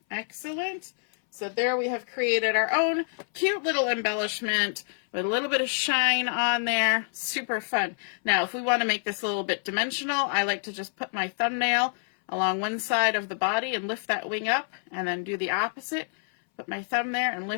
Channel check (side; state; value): right; silent; 60 dB below the other